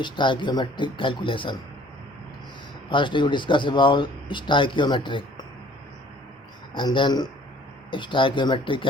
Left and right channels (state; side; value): normal; both; correlation 0.55